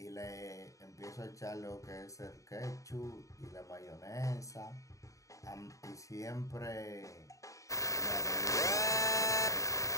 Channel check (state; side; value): late; right; 0.16 ms